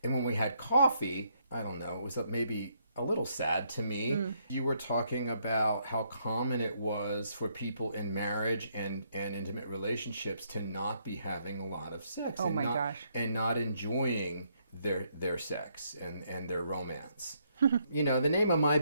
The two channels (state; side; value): inverted; both; correlation -0.73